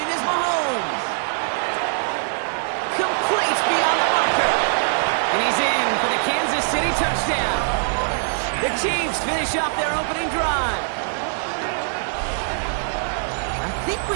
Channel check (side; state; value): left; silent; digital silence